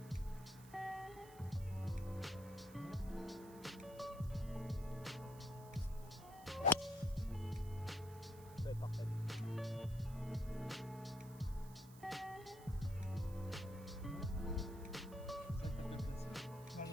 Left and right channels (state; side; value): noise; right; hiss, 20 dB below the sound